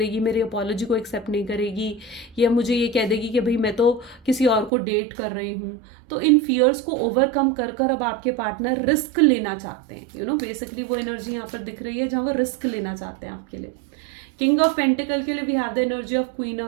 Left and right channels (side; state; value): left; drops out; at 4.7 s